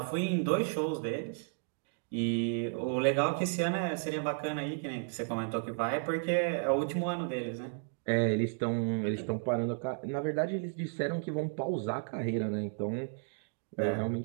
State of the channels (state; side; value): silent; left; digital silence